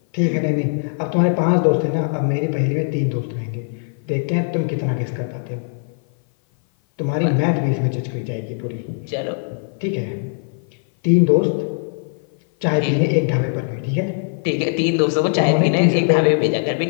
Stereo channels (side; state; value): right; silent; 56 dB below the other